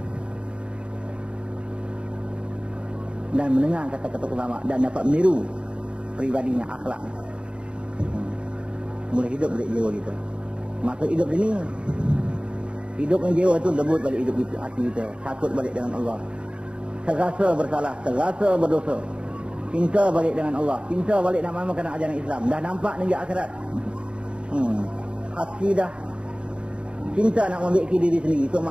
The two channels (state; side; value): late; left; 0.054 ms